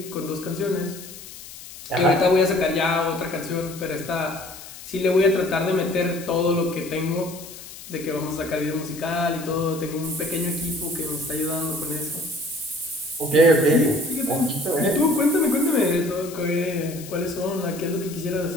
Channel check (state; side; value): noise; left; hiss, 15 dB below the sound